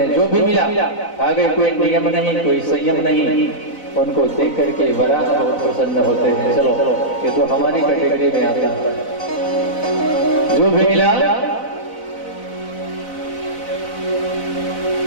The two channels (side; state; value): right; late; 4.0 ms